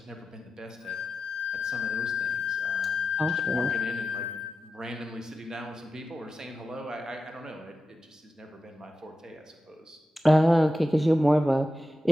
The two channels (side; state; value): both; normal; correlation 0.91